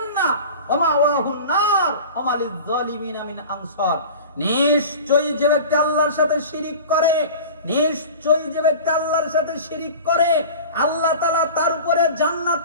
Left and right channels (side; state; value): both; inverted; correlation -0.37